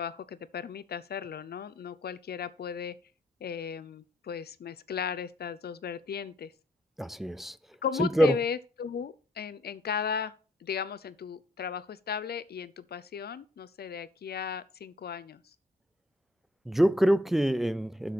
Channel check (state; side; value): normal; both; correlation 0.69